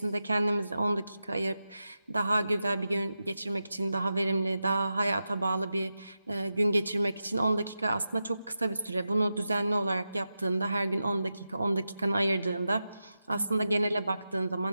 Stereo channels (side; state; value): both; inverted; correlation -0.90